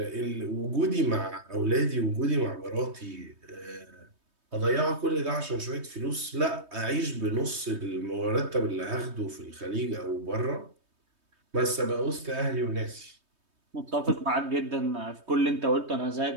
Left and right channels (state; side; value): late; left; 3.2 ms